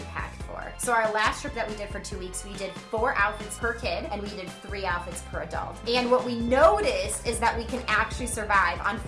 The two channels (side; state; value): both; identical; correlation 1.00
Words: packed for. So our last trip that we did for 2 weeks, we did 4 outfits per kid and we did 3 outfits per adult. And what we noticed is that we can actually survive on